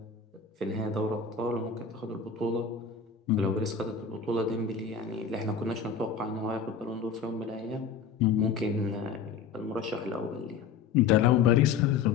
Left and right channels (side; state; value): right; quieter; 6.2 dB